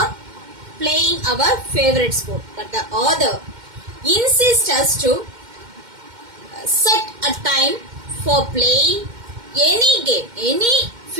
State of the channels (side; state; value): left; late; 2.1 ms